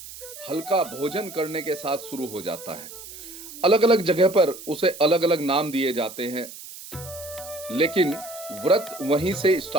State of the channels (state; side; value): noise; right; hiss, 14 dB below the sound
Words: हल्का भोजन करने के साथ शुरू हो जाता है। अलग अलग जगह पर उसे अलग अलग नाम दिए जाते हैं, लेकिन व्रत वहीं से